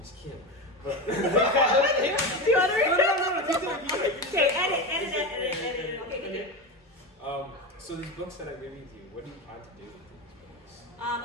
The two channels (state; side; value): normal; both; correlation 0.20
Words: Kim? But Do you want to read no. Okay, edit. Okay. So these books that I gave you, what do you plan to do with these books?